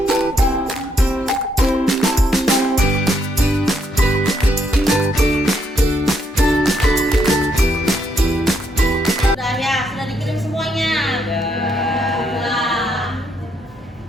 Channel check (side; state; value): both; normal; correlation 0.75